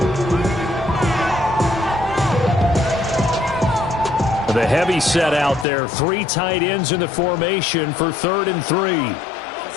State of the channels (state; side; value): drops out; right; at 5.7 s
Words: The heavy set out there. 3 tight ends in the formation for 3rd and 3.